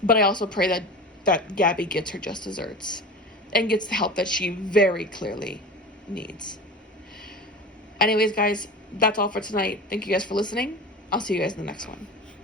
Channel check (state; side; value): normal; both; correlation 0.32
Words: But I also pray that Gabby gets her just desserts and gets the help that she very clearly needs. Anyways, guys, that's all for tonight. Thank you guys for listening. I'll see you guys in the next one.